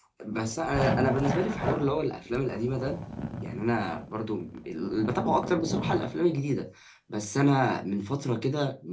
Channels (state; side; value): identical; both; correlation 1.00